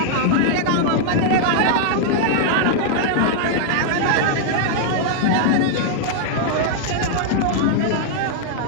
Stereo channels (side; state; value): both; different; correlation -0.01